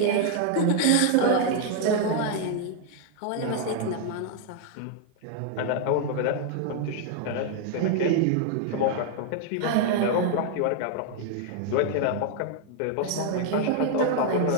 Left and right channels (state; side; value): different; both; correlation 0.00